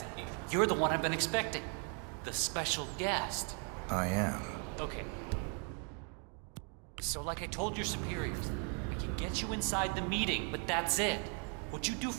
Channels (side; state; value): left; quieter; 39.7 dB